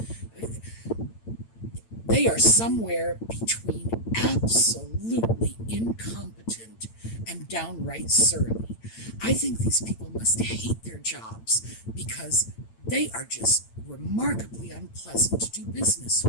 They are somewhere between absolutely incompetent and downright surly. I think these people must hate their jobs because they are just remarkably unpleasant to do business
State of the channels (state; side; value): late; right; 8.9 ms